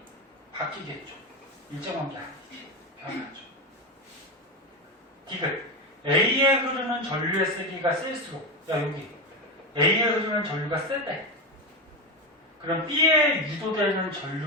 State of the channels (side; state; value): both; normal; correlation 0.15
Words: 바뀌겠죠. 일정한 게 아니지. 변하죠. 디귿. A에 흐르는 전류의 세기가 셀수록, 야, 여기 A에 흐르는 전류가 세대. 그럼 B에 유도되는